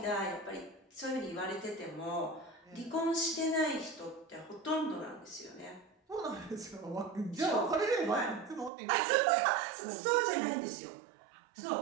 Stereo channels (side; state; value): left; drops out; at 8.7 s